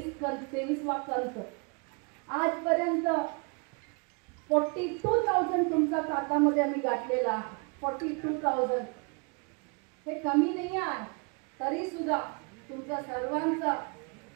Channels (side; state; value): left; quieter; 34.2 dB